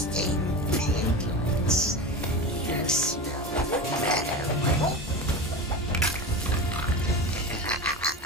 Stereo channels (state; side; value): normal; both; correlation 0.26